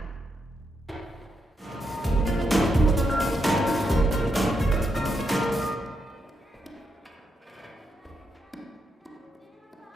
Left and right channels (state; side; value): normal; both; correlation 0.82